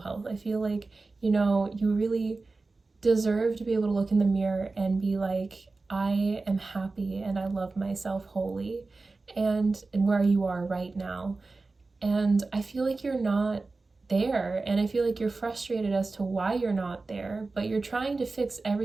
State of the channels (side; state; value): left; quieter; 3.6 dB